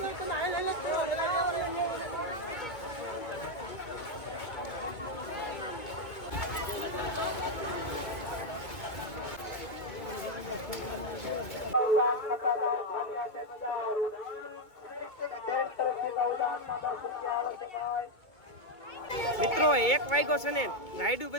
મિત્રો 1 વાગ્યો છે ને રાઈડું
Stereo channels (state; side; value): late; right; 2.2 ms